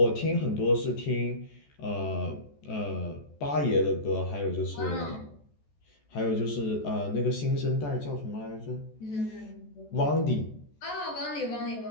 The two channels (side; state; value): right; late; 14 ms